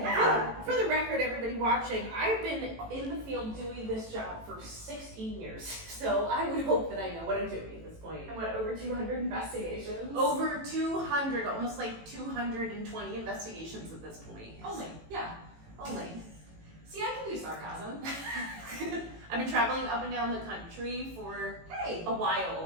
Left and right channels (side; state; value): left; late; 18 ms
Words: For the record, everybody watching, I've been in the field doing this job for 16 years. So I would hope that I know what I'm doing at this point. And what, over 200 investigations? Over 200, almost like 220 investigations at this point. Only, yeah. Only. See, I can do sarcasm. I've been traveling up and down the country for Hey. a